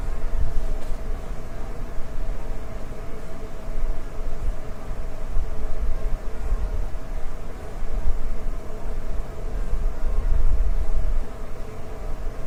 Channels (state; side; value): identical; both; correlation 1.00